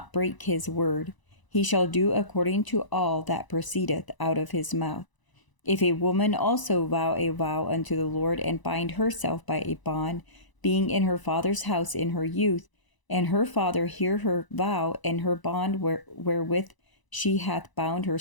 break his word. He shall do according to all that proceedeth out of his mouth. If a woman also vow a vow unto the Lord, and bind herself by a bond, being in her father's house in her youth, and her father hear her vow and her bond wherewith she hath bound her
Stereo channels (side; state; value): right; late; 1.0 ms